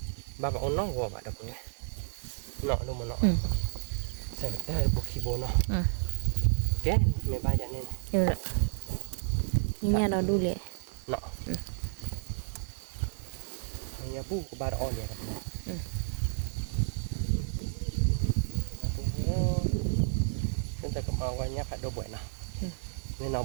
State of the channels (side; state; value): left; silent; digital silence